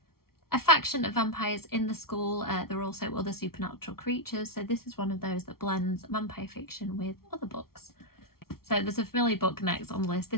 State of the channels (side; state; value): right; late; 0.94 ms